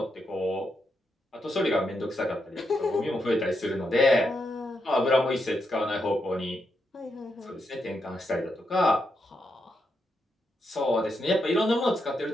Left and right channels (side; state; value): both; normal; correlation 0.82